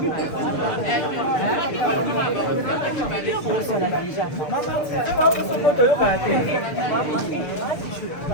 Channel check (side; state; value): right; late; 6.7 ms